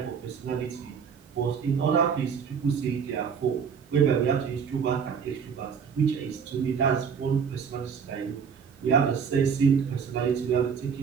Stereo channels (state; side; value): quieter; left; 6.7 dB